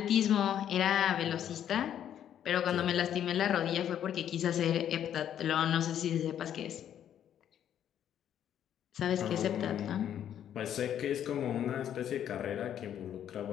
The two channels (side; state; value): right; quieter; 10.0 dB